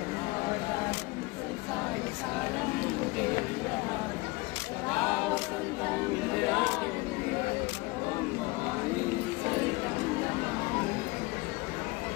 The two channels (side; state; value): right; quieter; 23.5 dB